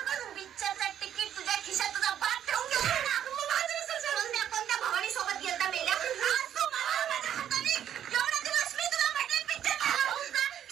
पिक्चरचा तिकीट तुझ्या खिशात तुझा बाप ठेवून गेला ना. कोणत्या भवानी सोबत गेलता मेल्या? आज तू मला माझ्या हाताने एवढा दिवस मी तुला म्हटलं पिक्चर पाहू का?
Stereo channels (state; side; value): quieter; left; 10.1 dB